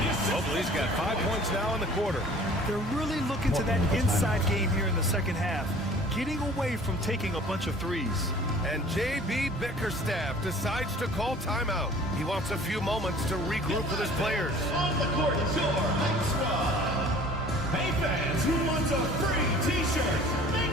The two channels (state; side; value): normal; both; correlation 0.49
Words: Mobley's got 5 points now in the quarter. They're really looking to that inside game here in the second half, getting away from taking a bunch of threes. And J.B. Bickerstaff decides to call timeout. He wants a few moments to regroup with his players. On the court is your Heights squad. Hey fans, fans who want a free t-shirt,